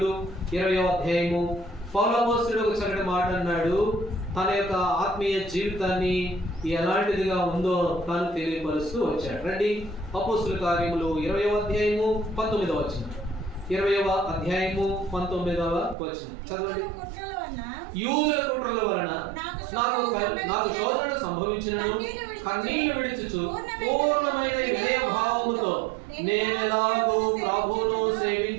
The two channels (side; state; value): left; drops out; at 16.0 s